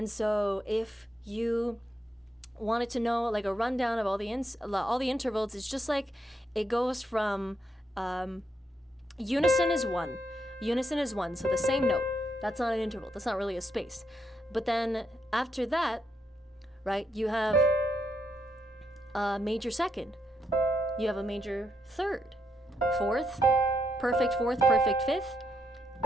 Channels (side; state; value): both; normal; correlation 0.79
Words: so if you wanted to know like a rundown of all the intervals, it's just like it goes from unison is one, so the same note. That's not an interval. That's not really a space. But then after that, right, you have a major second. You have a major third, fourth, perfect fifth,